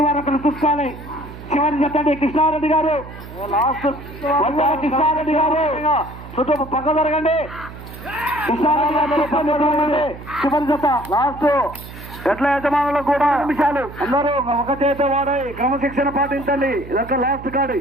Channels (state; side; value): noise; right; hum, 14 dB below the sound